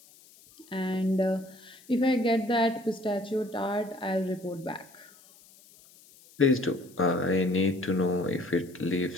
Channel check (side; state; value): left; noise; hiss, 25 dB below the sound